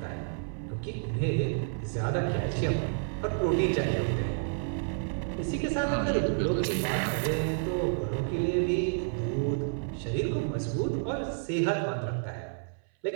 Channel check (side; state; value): left; silent; 58 dB below the other